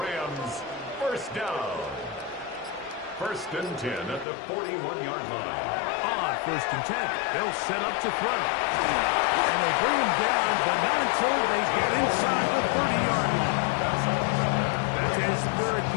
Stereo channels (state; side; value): drops out; right; at 4.2 s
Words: 1st down. 1st and 10 at the 41-yard line. On 1st and 10, they'll set up to throw. And they bring him down, but not until they get inside the 30-yard line. That's his 3rd